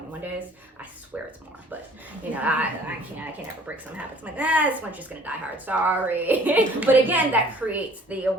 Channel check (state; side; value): normal; both; correlation 0.54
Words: days. I swear it's more, but I can't ever break some habits. I'm like, this one's just gonna die hard, sorry. But again, that creates the